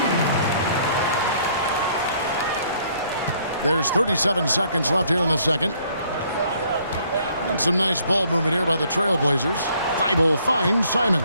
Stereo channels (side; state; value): both; inverted; correlation -0.63